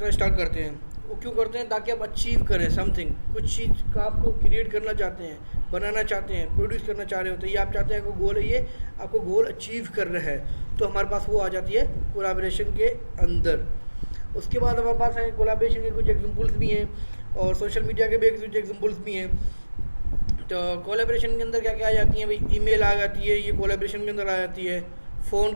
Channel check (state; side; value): inverted; both; correlation -1.00